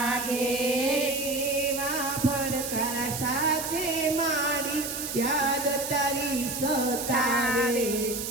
એવા ફડકર સાથે મારી યાદ તારી સતાવે,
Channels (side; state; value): right; noise; hiss, 5 dB below the sound